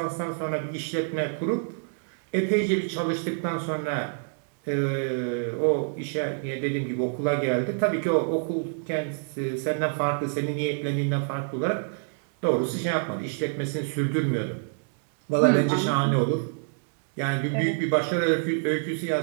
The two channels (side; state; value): left; silent; digital silence